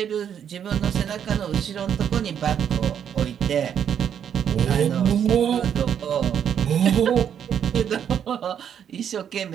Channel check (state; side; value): quieter; left; 8.7 dB